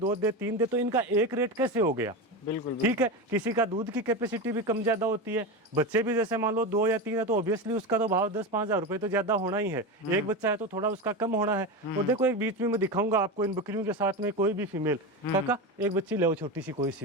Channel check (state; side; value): normal; both; correlation 0.20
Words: दे, 3 दे, तो इनका एक रेट कैसे हो गया? बिल्कुल ठीक है। किसी का दूध की कैपेसिटी भी कम ज्यादा होती है, बच्चे भी जैसे मान लो 2 या 3 है तो ऑब्वियसली उसका तो भाव 10-5 हज़ार रुपए तो ज्यादा होना ही है। एक बच्चा है तो थोड़ा उसका कम होना है। और देखो एक बीच में मैं दिखाऊंगा आपको इन बकरियों के साथ में कोई भी फीमेल, काका एक बच्ची ले छोटी सी कोई सी